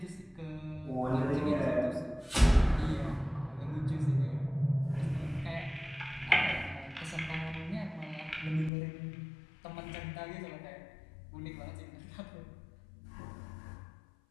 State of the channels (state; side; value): drops out; right; at 8.7 s